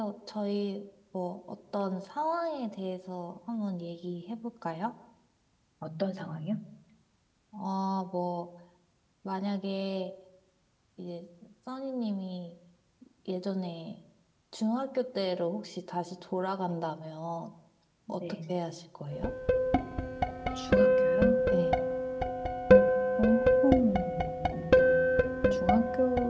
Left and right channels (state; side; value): identical; both; correlation 1.00